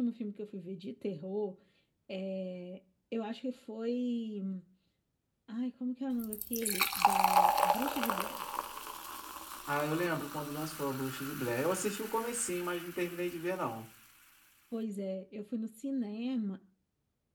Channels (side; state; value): both; identical; correlation 1.00